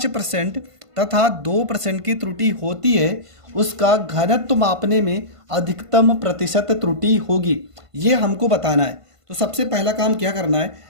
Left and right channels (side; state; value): left; late; 1.5 ms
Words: तथा 2% की त्रुटि होती है, उसका घनत्व मापने में अधिकतम प्रतिशत त्रुटि होगी। ये हमको बताना है। तो सबसे पहला काम क्या करना है,